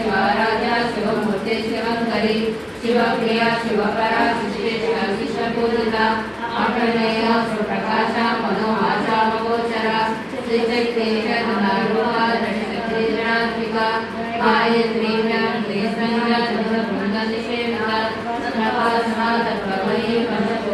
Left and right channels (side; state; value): both; identical; correlation 1.00